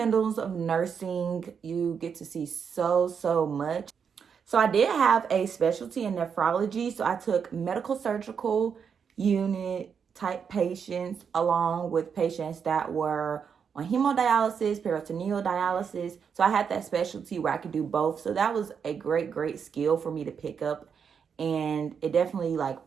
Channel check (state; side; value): quieter; left; 6.8 dB